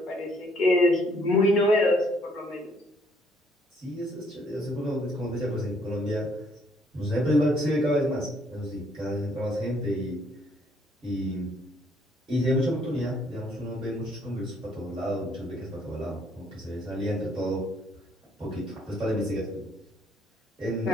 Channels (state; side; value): normal; both; correlation 0.66